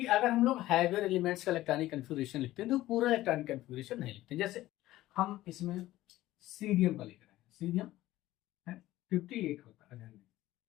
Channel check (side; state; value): right; quieter; 15.9 dB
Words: अगर हम लोग हैवियर एलिमेंट्स का इलेक्ट्रॉनिक कन्फिगरेशन लिखते हैं तो पूरा इलेक्ट्रॉनिक कन्फिगरेशन नहीं लिखते। जैसे हम इसमें सीरियम का लिख रहे हैं, सीरियम है 58 होता है,